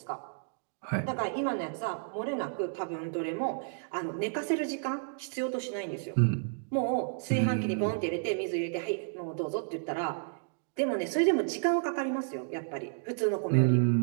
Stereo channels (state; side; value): silent; left; digital silence